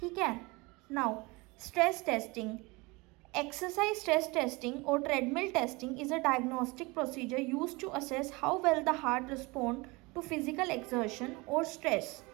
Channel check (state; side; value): quieter; left; 24.9 dB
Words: है. Now stress testing. Exercise stress testing or treadmill testing is a diagnostic procedure used to assess how well the heart responds to physical exertion or stress.